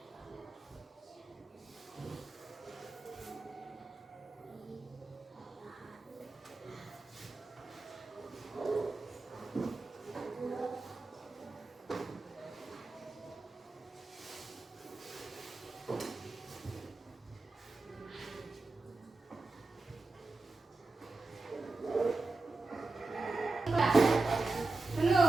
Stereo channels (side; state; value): left; quieter; 3.5 dB